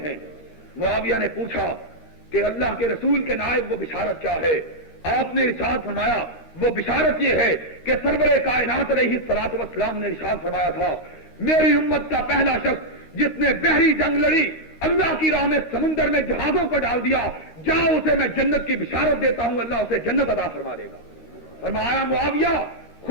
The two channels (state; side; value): late; right; 13 ms